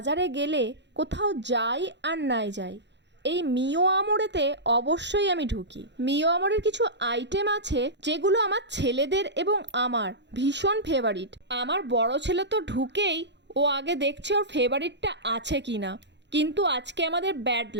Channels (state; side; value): late; left; 0.52 ms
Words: গেলে কোথাও যাই আর নাই যাই, এই মিও আমরেতে অবশ্যই আমি ঢুকি। মিও আমরের কিছু আইটেম আছে যেগুলো আমার ছেলেদের এবং আমার ভীষণ ফেভারিট। আমার বড় ছেলে তো ঢুকেই ও আগে দেখছে ওর ফেভারিটটা আছে কি না, কিন্তু আজকে আমাদের ব্যাড